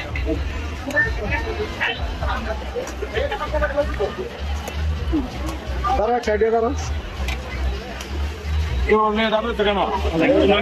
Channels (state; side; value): identical; both; correlation 1.00